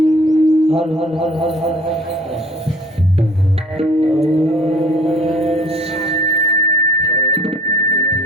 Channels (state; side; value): normal; both; correlation 0.50